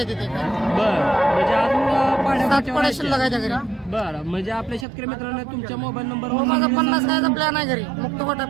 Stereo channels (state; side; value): drops out; left; at 4.9 s